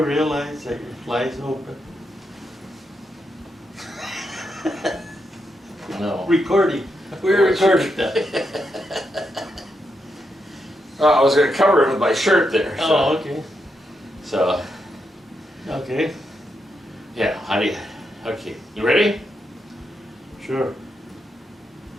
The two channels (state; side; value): normal; both; correlation 0.83